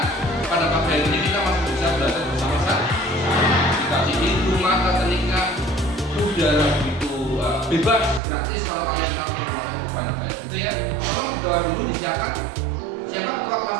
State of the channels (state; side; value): drops out; left; at 8.2 s